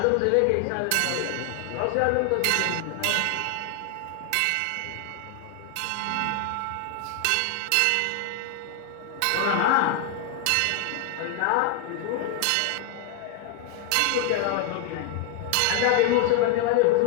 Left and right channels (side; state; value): both; different; correlation 0.00